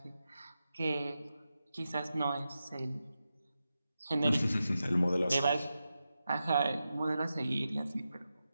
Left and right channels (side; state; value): both; inverted; correlation -0.90